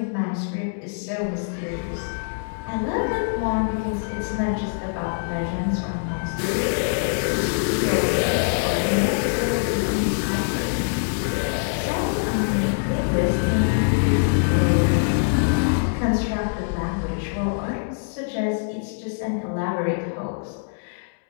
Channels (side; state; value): right; silent; digital silence